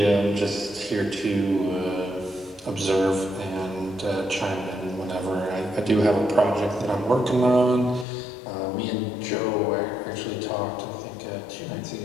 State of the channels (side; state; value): right; drops out; at 8.1 s